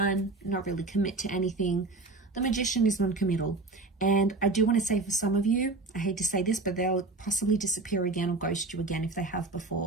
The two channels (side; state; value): left; quieter; 3.3 dB